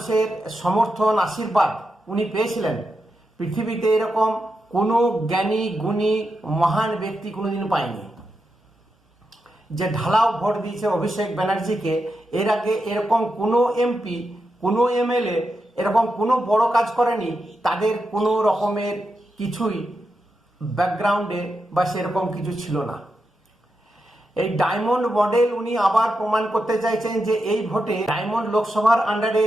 সমর্থন, আশীর্বাদ উনি পেয়েছিলেন। পৃথিবীতে এরকম কোনো জ্ঞানী গুণী মহান ব্যক্তি কোনোদিন পায়নি যে ঢালাও ভোট দিয়েছে অভিষেক ব্যানার্জিকে। এর আগে এরকম কোনো এমপি, কোনো এমএলএ এরকম কোনো বড় কাজ করেনি, তাদের কোনো রকমের কিছুই ব্যাকগ্রাউন্ডে বা সেরকম কিছু ছিল না। এই ডায়মন্ড মডেল উনি আবার প্রমাণ করতে চাইছেন যে এই ভোটে ডায়মন্ড লোকসভার আন্ডারে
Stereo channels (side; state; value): both; normal; correlation 0.87